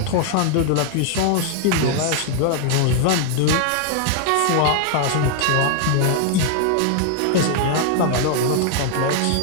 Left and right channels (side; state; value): both; different; correlation 0.00